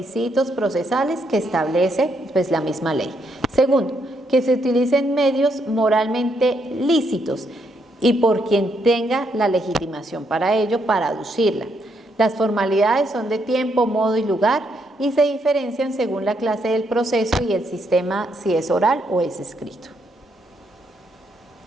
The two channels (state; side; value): normal; both; correlation 0.76